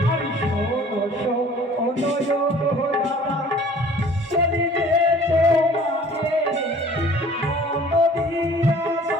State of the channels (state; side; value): normal; both; correlation 0.50